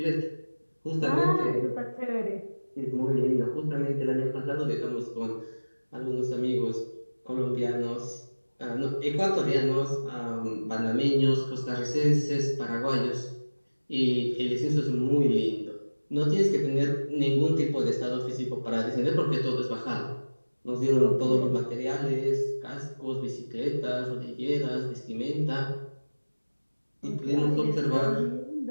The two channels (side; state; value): both; inverted; correlation -1.00